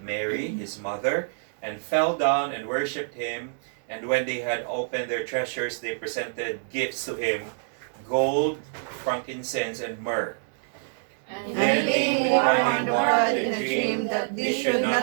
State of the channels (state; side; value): silent; left; digital silence